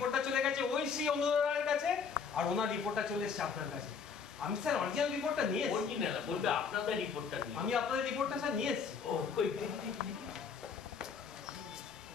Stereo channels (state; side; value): quieter; right; 6.0 dB